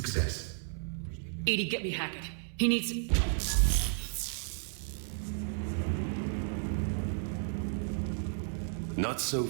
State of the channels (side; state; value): left; silent; 56 dB below the other